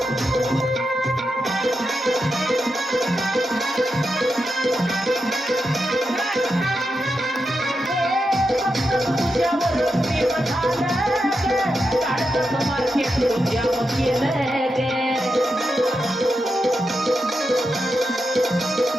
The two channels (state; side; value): normal; both; correlation 0.87